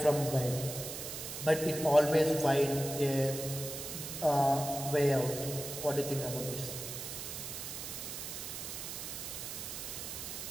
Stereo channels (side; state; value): right; noise; hiss, 7 dB below the sound